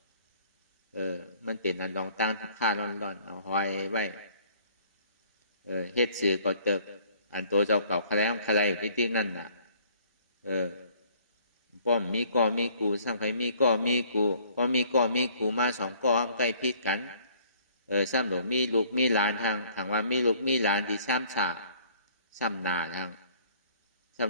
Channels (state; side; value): inverted; both; correlation -0.58